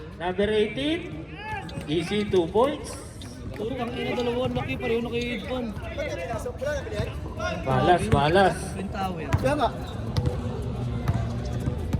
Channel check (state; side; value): identical; both; correlation 1.00